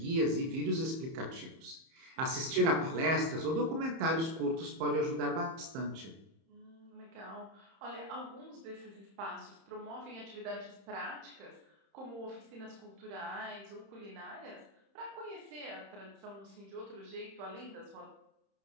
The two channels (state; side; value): late; left; 31 ms